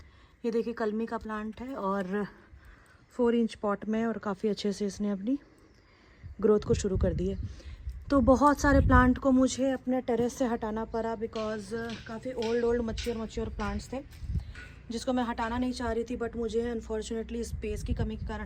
ये देखिए कलमी का प्लांट है और 4 इंच पॉट में, और काफ़ी अच्छे से इसने अपनी ग्रोथ को शुरू कर दी है। तो बहुत सारे प्लांट को मुझे अपने टेरेस से हटाना पड़ा बिकॉज़ काफ़ी ओल्ड मच्योर प्लांट्स थे जिसको मैं हटाना नहीं चाह रही थी, बट मुझे अनफॉर्चुनेटली स्पेस की कमी के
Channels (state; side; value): identical; both; correlation 1.00